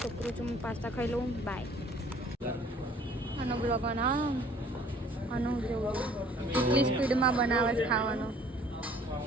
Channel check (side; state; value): both; normal; correlation 0.55